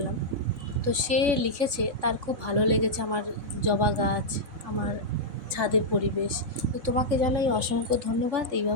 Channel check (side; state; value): left; late; 3.7 ms